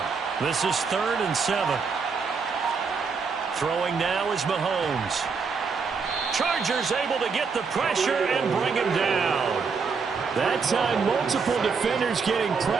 This is 3rd and 7. Throwing now is Mahomes. Chargers able to get the pressure and bring him down. That time, multiple defenders getting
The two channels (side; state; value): left; quieter; 5.3 dB